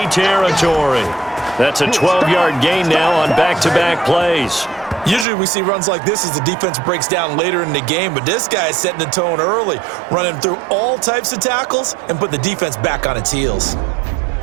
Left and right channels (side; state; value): left; drops out; at 5.2 s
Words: territory. That's a 12-yard gain now on back-to-back plays. Usually we see runs like this as the defense breaks down later in the game, but this guy is setting the tone early, running through all types of tackles and put the defense back on its heels.